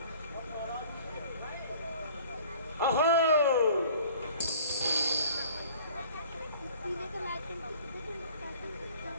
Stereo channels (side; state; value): both; inverted; correlation -0.50